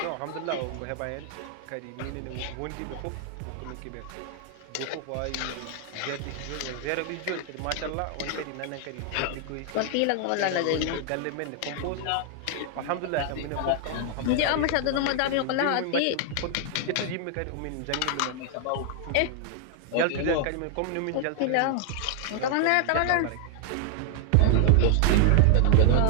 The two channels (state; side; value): different; both; correlation 0.00